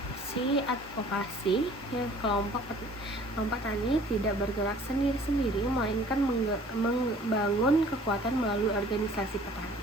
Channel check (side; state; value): both; normal; correlation 0.52